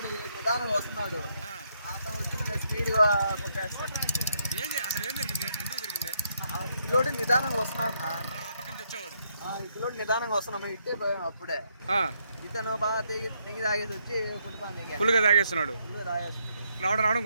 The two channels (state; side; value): inverted; both; correlation -0.75